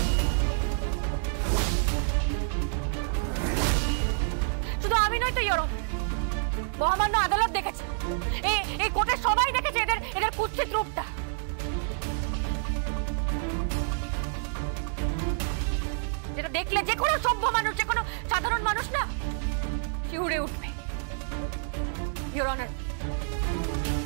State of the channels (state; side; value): silent; left; digital silence